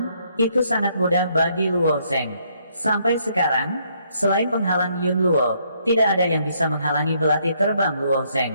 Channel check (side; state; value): both; inverted; correlation -0.71